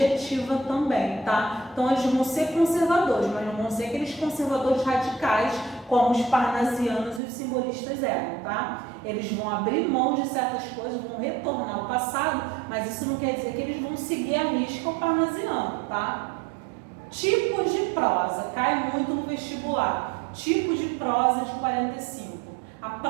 também, tá? Então, eles vão ser conservadores, mas não vão ser aqueles conservadores radicais como os parnasianos e os simbolistas eram, tá? Eles vão abrir mão de certas coisas, vão retornar ao passado, mas isso não quer dizer que eles vão seguir a risca o parnasiano, tá? Tipos de prosa, cai muito no vestibular. Tipo de prosa de 45. A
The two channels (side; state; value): left; drops out; at 7.2 s